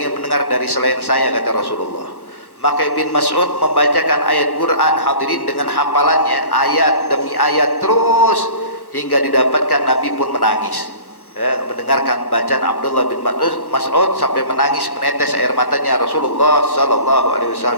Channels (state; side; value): late; right; 1.1 ms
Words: mendengar dari selain saya, kata Rasulullah. Maka Ibn Mas'ud membacakan ayat Quran hadirin dengan hafalannya, ayat demi ayat terus, hingga didapatkan Nabi pun menangis mendengarkan bacaan Abdullah bin Mas'ud sampai menangis, menetes air matanya Rasulullah sallallahu alaihi